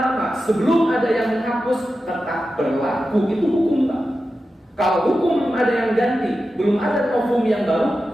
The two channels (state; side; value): normal; both; correlation 0.92